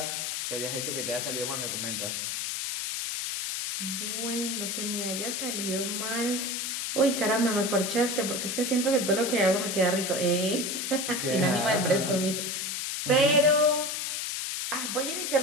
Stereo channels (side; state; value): left; noise; hiss, 2 dB below the sound